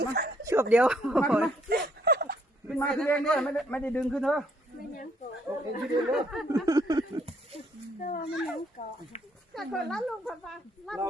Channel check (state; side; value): normal; both; correlation 0.68